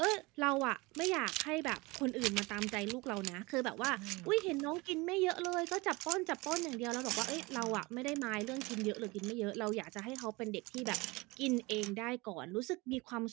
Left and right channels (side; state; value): left; quieter; 24.0 dB